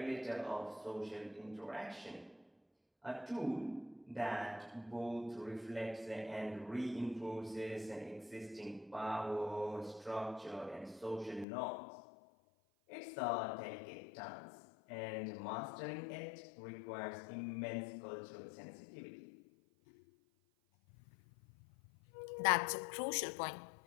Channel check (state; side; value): drops out; right; at 11.5 s